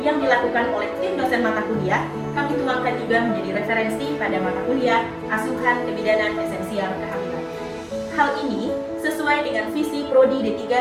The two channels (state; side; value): identical; both; correlation 1.00